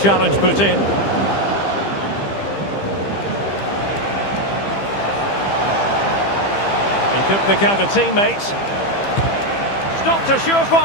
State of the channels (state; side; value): late; right; 15 ms